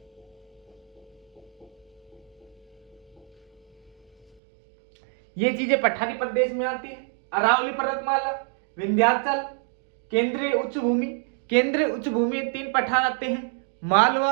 ये चीजें पठारी प्रदेश में आती है। अरावली पर्वतमाला, विंध्याचल, केंद्रीय उच्च भूमि। केंद्रीय उच्च भूमि में 3 पठार आते हैं,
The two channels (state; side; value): drops out; left; at 4.4 s